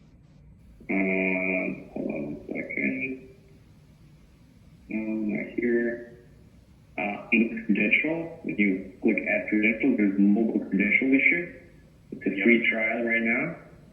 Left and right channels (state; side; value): identical; both; correlation 1.00